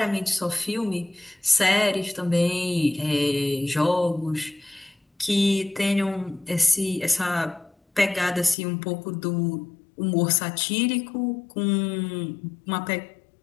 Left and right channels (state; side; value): drops out; right; at 8.6 s